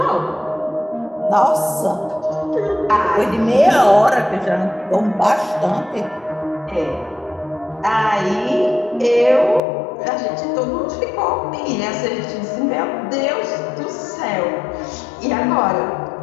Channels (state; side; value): drops out; right; at 9.6 s